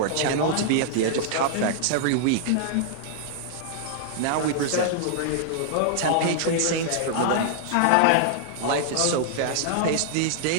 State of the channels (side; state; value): both; different; correlation -0.01